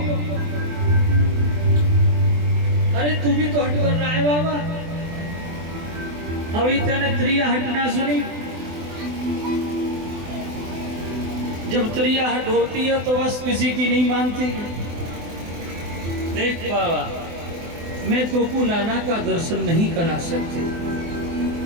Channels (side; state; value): left; late; 24 ms